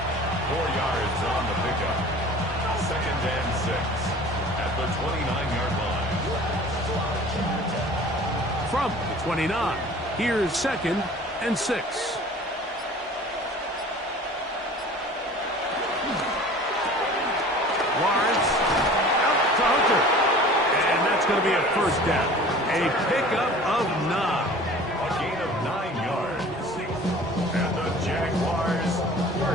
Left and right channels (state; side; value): normal; both; correlation 0.44